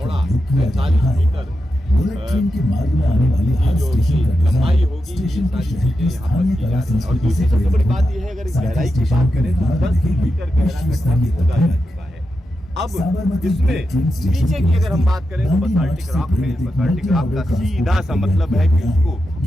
47 मीटर की जो लंबाई होगी। ये सारी चीजें यहाँ पर की जा रही है। और दूसरी सबसे बड़ी बात यह है, अगर इस गहराई की बात करें तो 10 मीटर गहरा गड्ढा खोदा जा चुका है। अब इसमें नीचे की अगर हम बात करें तो बसाल्टिक रॉक है। बसाल्टिक रॉक का सीधा सा मतलब है कि उसको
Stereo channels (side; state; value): both; normal; correlation 0.88